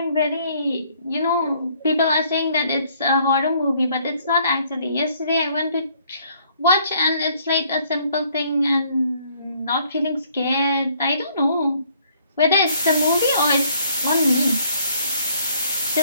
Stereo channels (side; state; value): both; inverted; correlation -0.64